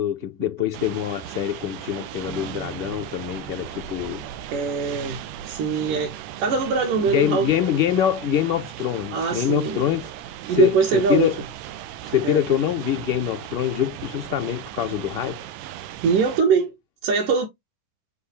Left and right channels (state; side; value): late; left; 10 ms